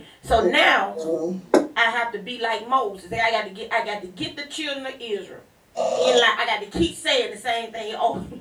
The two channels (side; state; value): both; identical; correlation 1.00